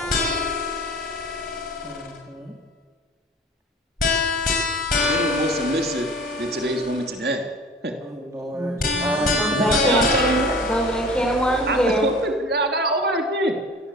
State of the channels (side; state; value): both; normal; correlation 0.41